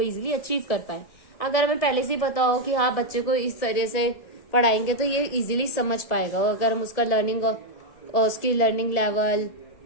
अचीव कर पाए। अगर हमें पहले से ही पता हो कि हाँ बच्चे को इस तरह से पढ़ाएंगे तो ये इजीली समझ पाएगा। अगर हम उसका लर्निंग और उसकी लर्निंग लेवल,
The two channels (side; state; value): right; late; 1.8 ms